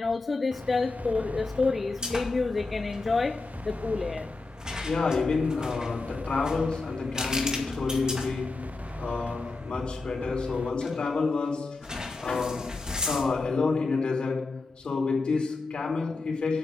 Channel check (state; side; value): quieter; right; 3.7 dB